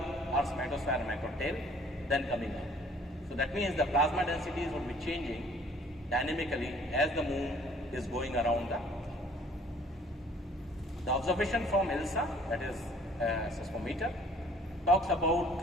magnetosphere and macrotail, then coming up. So that means the plasma densities would be changing dynamically as the moon is going around the Earth. The observation from ILSA, that is seismometer, talks about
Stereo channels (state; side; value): normal; both; correlation 0.56